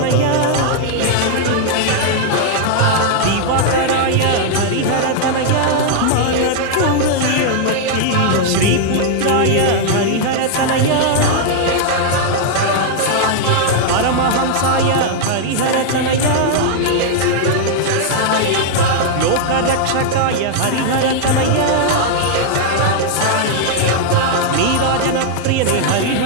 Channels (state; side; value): different; both; correlation 0.00